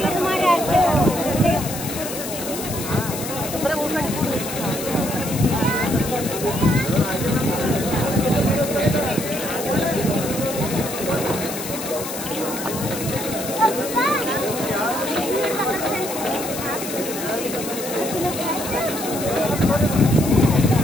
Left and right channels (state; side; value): noise; left; hiss, 8 dB below the sound